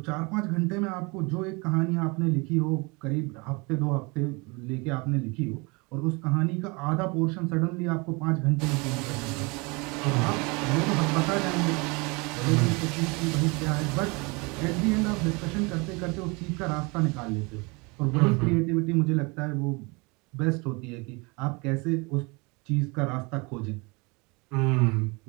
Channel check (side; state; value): left; quieter; 28.0 dB